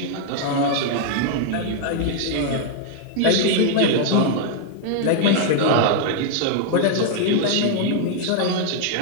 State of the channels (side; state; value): both; different; correlation 0.00